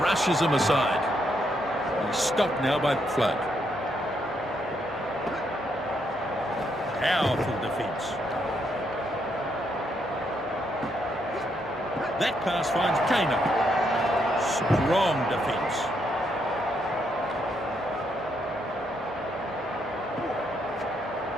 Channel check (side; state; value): both; normal; correlation 0.76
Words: rushes him aside. He's stopped now by Flood. Powerful defence. That pass finds Kano. Strong defence.